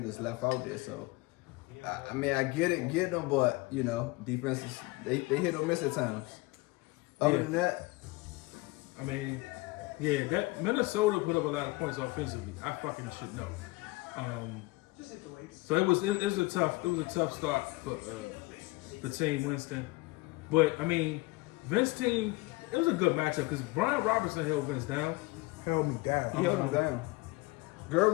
left out there, so I mean, I get them, but defenses they hit or miss at times. Other than that, I mean, yeah, that Minnesota put up a lot of points offensively. I fucking should know. So it was a tough start for the team Winston, but I mean, Vince team, it was a good matchup because Brian Robinson held Vince down. Held me down. He held him down. Garrett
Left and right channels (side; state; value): right; quieter; 22.8 dB